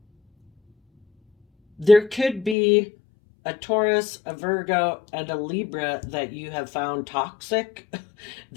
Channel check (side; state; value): right; drops out; at 2.6 s